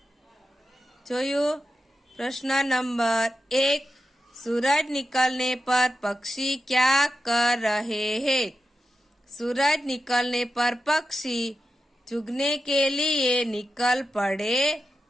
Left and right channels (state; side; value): normal; both; correlation 0.90